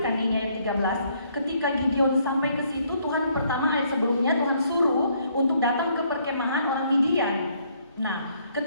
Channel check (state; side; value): inverted; both; correlation -0.68